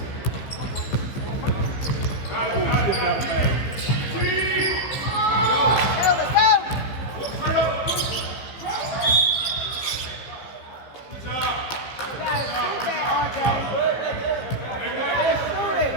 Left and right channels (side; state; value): right; late; 15 ms